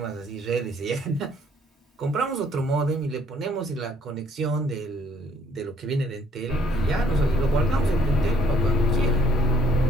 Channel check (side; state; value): both; normal; correlation 0.63